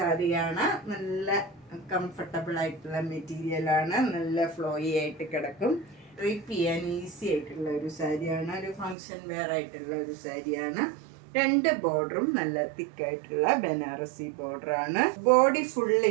നല്ല കംഫർട്ടബിൾ ആയിട്ടുള്ള മെറ്റീരിയലാണ്. നല്ല ഫ്ലോയി ആയിട്ട് കിടക്കും. ഡ്രൈപ്പ് ചെയ്യാൻ ഈസി ആയിട്ടുള്ള ഒരു സാരിയാണ്. ഒരു ഫങ്ഷൻ വെയർ ആയിട്ടുള്ള ഒരു സാരിയാണ്. രണ്ട് ബോർഡറും നല്ല തിക്കായിട്ടുള്ള ബനാറസി ബോർഡറാണ്. ബോഡി ഫുൾ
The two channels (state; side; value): drops out; left; at 9.0 s